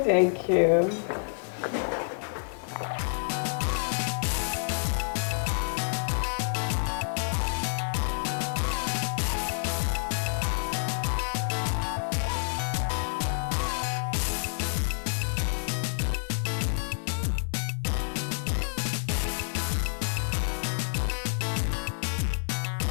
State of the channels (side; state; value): right; silent; digital silence